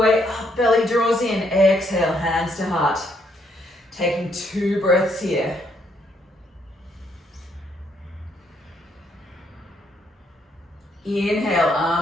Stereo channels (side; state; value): both; normal; correlation 0.72